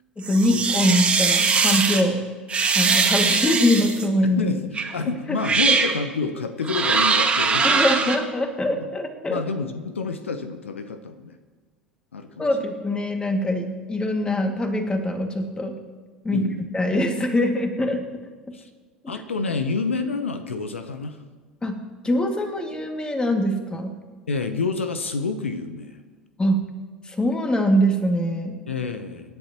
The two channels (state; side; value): normal; both; correlation 0.45